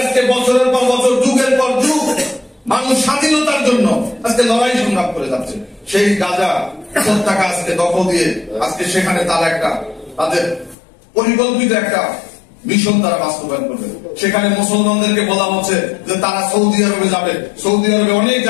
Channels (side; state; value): right; drops out; at 10.8 s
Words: আজকে বছরের পর বছর, যুগের পর যুগ মানুষ স্বাধীনতার জন্য আজকে লড়াই সংগ্রাম করে যাচ্ছে। সেই গাজা উপত্যকা আজকে দখল দিয়ে আজকে সেখানে তারা তাদের পরিকল্পিত একটা মিশন তারা বাস্তবায়ন করবে। সেখানে মুসলমানদেরকে বলা হচ্ছে যে তারা সৌদি আরবে যাবে, সৌদি আরবে অনেক